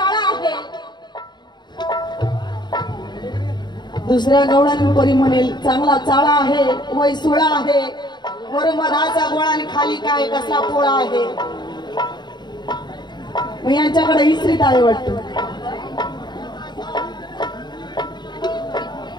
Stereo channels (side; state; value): right; late; 0.21 ms